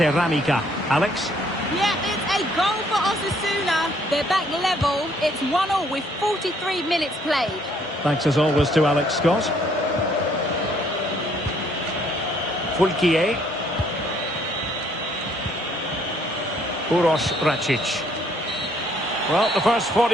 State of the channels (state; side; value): normal; both; correlation 0.65